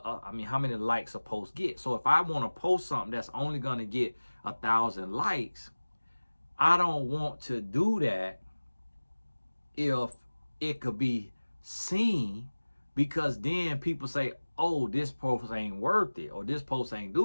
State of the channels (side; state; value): both; inverted; correlation -1.00